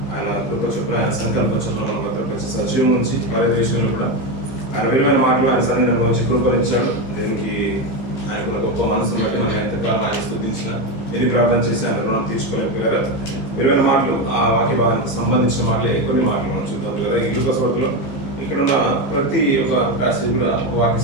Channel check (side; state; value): right; late; 15 ms